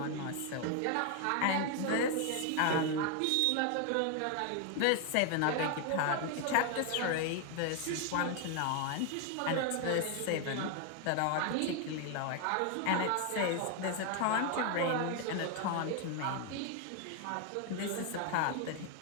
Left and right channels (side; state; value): both; different; correlation 0.01